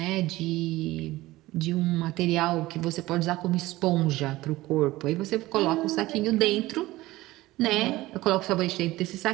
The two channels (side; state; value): left; quieter; 18.0 dB